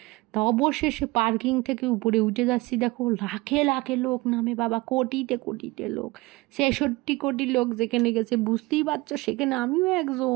তা অবশেষে পার্কিং থেকে উপরে উঠে যাচ্ছি, দেখো লাখে লাখে লোক নামে বাবা, কোটিতে লোক, 66 কোটি লোক যেখানে গেছে বুঝতেই পারছো, সেখানে আমিও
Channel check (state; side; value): quieter; left; 22.5 dB